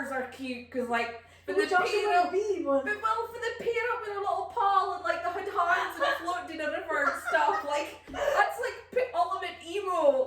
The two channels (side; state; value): both; identical; correlation 1.00